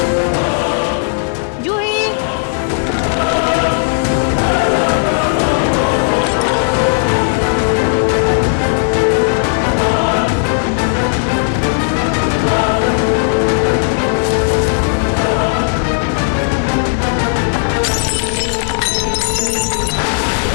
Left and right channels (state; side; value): silent; right; digital silence